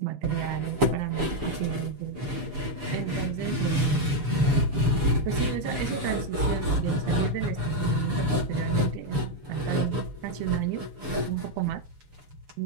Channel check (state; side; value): late; left; 6.9 ms